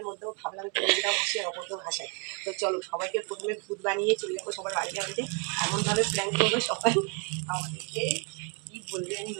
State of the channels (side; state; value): left; quieter; 35.2 dB